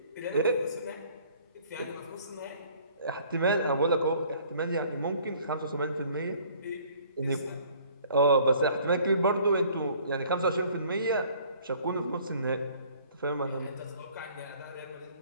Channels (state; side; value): inverted; both; correlation -0.55